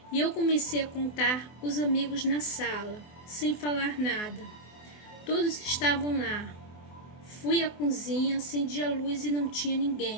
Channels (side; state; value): right; late; 24 ms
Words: E eu comecei a contar os amigos na sala, sem falar nada. Todos estavam lá. Fui à cozinha, acendi a luz e não tinha